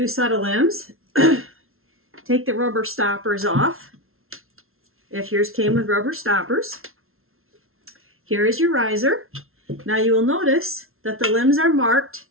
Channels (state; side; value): late; left; 0.62 ms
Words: set of limbs, take the rubber stoppers off, if yours came with rubber stoppers. Here is your riser. Now you will notice that the limbs are marked,